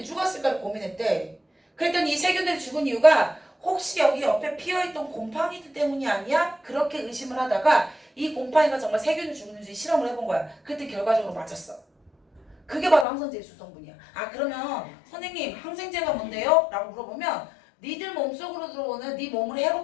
죽었을까를 고민했대. 그랬더니 이 세균들이 죽은 이유가 혹시 여기 옆에 피어있던 곰팡이들 때문이 아니야? 그렇게 의심을 하다가 이 곰팡이가 정말 세균을 죽는지 실험을 해본 거야. 그때 결과적으로 맞았어. 그게 바로 항생제의 주성분이야. 아 그러면 선생님 항생제가 뭔데요? 라고 물어보면 니들 몸속으로 들어오는 네 몸을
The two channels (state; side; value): drops out; right; at 13.1 s